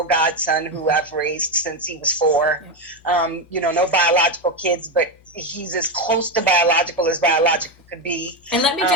godson who I've raised since he was 4. No biological kids, but he's as close to biological as biological could be. And let me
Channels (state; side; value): normal; both; correlation 0.11